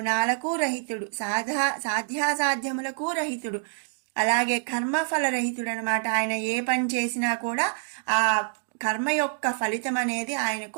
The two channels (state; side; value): silent; left; 60 dB below the other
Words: రహితుడు, సాధ్యాసాధ్యములకు రహితుడు, అలాగే కర్మఫల రహితుడు అనమాట. ఆయన ఏ పని చేసినా కూడా ఆ కర్మ యొక్క ఫలితం అనేది